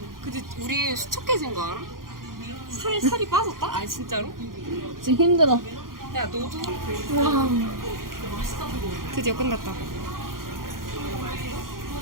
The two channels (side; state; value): left; late; 0.91 ms